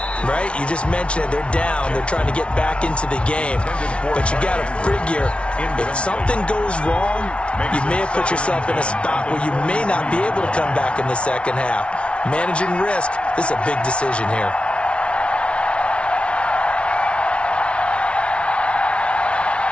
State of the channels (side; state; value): right; late; 0.060 ms